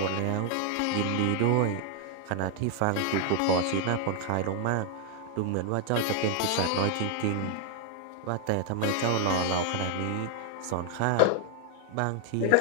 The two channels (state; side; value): different; both; correlation 0.00